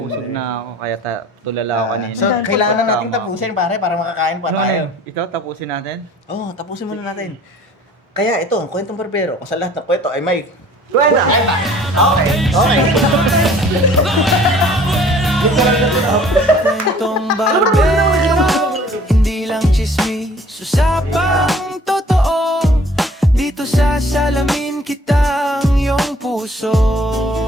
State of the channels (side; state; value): both; normal; correlation 0.52